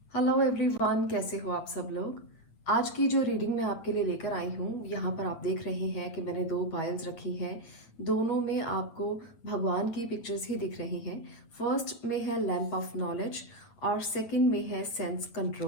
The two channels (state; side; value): late; right; 8.5 ms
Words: Hello everyone, कैसे हो आप सब लोग। आज की जो रीडिंग मैं आपके लिए लेकर आई हूँ, यहाँ पर आप देख रहे हैं कि मैंने दो पायल्स रखी हैं। दोनों में आपको भगवान की पिक्चर्स ही दिख रही हैं। फर्स्ट में है लैंप ऑफ नॉलेज और सेकंड में है सेंस